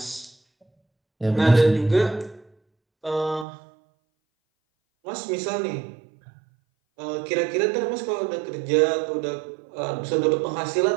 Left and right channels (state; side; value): drops out; left; at 3.5 s